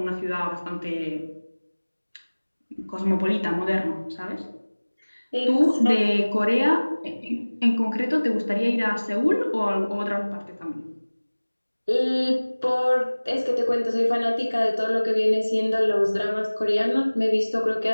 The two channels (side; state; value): both; inverted; correlation -1.00